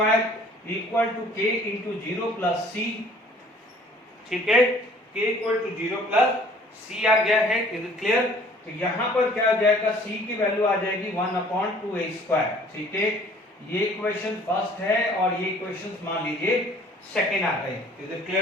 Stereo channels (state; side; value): normal; both; correlation 0.54